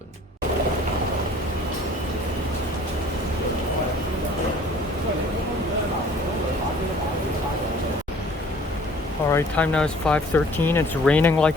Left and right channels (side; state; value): both; normal; correlation 0.52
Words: Alright, time now is 5:13. It's raining like